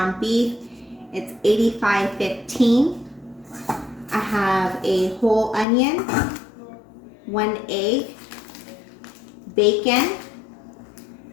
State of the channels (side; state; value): right; drops out; at 5.7 s